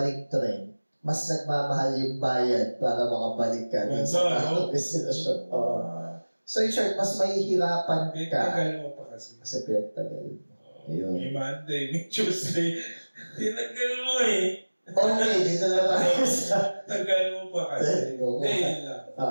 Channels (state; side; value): inverted; both; correlation -1.00